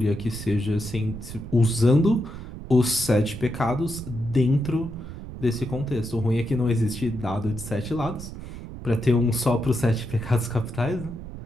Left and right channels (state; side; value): noise; right; rumble, 11 dB below the sound